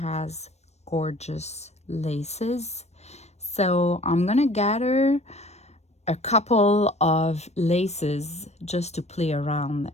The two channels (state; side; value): late; right; 0.31 ms